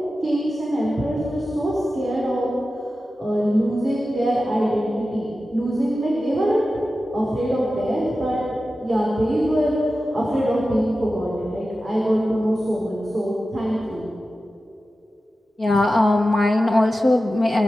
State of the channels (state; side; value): normal; both; correlation 0.93